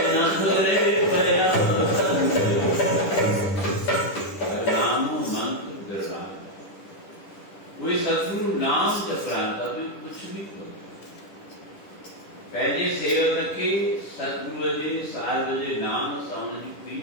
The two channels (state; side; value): late; right; 10 ms